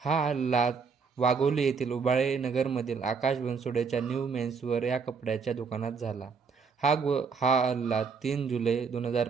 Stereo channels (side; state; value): left; quieter; 5.4 dB